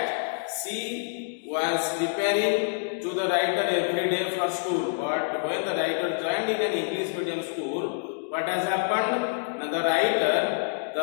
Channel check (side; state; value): right; silent; digital silence